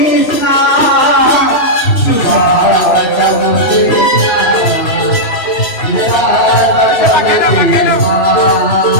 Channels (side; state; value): right; late; 3.0 ms